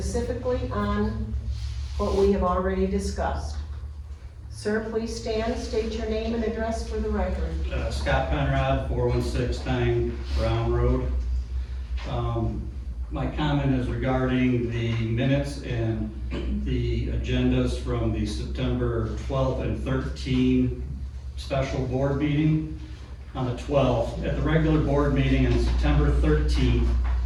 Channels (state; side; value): identical; both; correlation 1.00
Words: on what we have already discussed. Sir, please stand, state your name and address for the record. Scott Conrad, 4169 Brown Road. My comment is regarding the minutes and the agendas from the September 12th and 13th special board meeting. On the 12th, at the regular board meeting on September 13th,